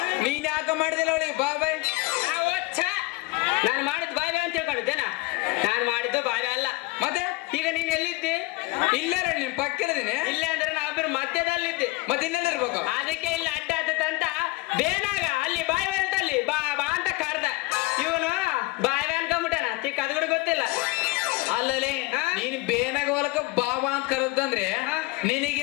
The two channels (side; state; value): right; quieter; 22.1 dB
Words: ನೀನ್ ಯಾಕ ಮಾಡಿದಿಲ್ಲ ಅವಳಿಗೆ ಬಾಯ್ ಬಾಯ್. ನಾನು ಮಾಡಿದ್ದು ಬಾಯ್ ಬಾಯ್ ಅಂತ ತಿಳ್ಕೊಂಡಿದ್ದೇನಾ? ನಾನು ಮಾಡಿದ್ದು ಬಾಯ್ ಬಾಯ್ ಅಲ್ಲ. ಮತ್ತೆ ಈಗ ನೀನ್ ಎಲ್ಲಿದ್ದಿ? ಇಲ್ಲೇ ನಿನ್ ಪಕ್ಕದೀನಿ. ಇಲ್ಲೇ ಅಂದ್ರೆ ನಾವಿಬ್ರು ಮಧ್ಯದಲ್ಲಿದ್ದಿ. ಮತ್ತೆ ಇನ್ನೆಲ್ಲಿರ್ಬೇಕು? ಅದಕ್ಕೆ ಇಲ್ಲಿ ಅಡ್ಡ ಆತಂತ ಬೇನಾಗ ಅಲ್ಲಿ ಬಾಯ್ ಬಾಯ್ ಅಂತ ಅಲ್ಲಿ ಬಾ ಬಾ ಅಂತ ಕರ್ದ. ಇವನು ಬಾಯ್ ಬಾಯ್ ಅನ್ಕೊಂಡ್ಬಿಟ್ಟಾನ, ತಿಕ್ಕ ಅದು ಕೂಡ ಗೊತ್ತಿಲ್ಲ. ಅಲ್ಲಲ್ಲಿ ನೀನ್ ಬೇನಾಗ ಹೊಲಕ ಬಾಬಾ ಅಂತ ಕರೆದಂದ್ರೆ